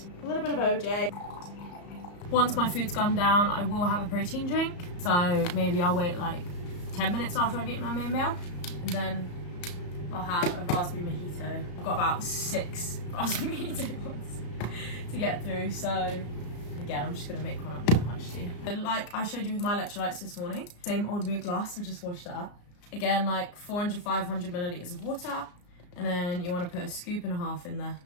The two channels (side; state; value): right; late; 34 ms